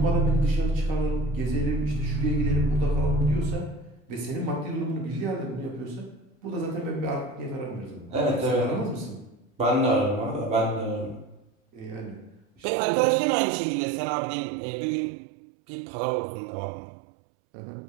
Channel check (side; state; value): left; drops out; at 12.6 s